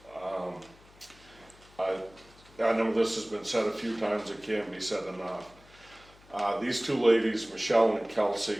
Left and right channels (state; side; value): noise; left; hum, 25 dB below the sound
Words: I know this has been said a few times, it can't be said enough. These two ladies, Michelle and Kelsey,